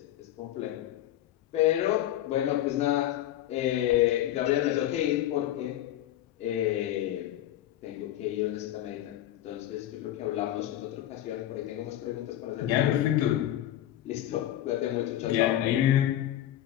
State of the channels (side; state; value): right; quieter; 12.9 dB